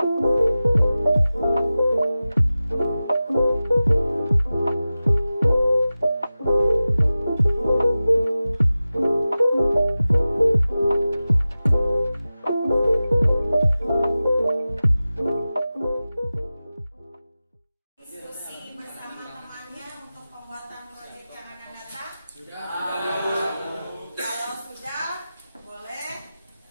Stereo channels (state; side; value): inverted; both; correlation -0.95